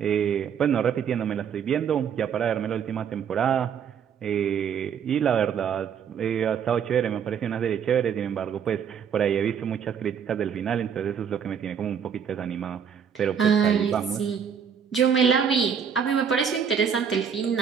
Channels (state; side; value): quieter; left; 7.5 dB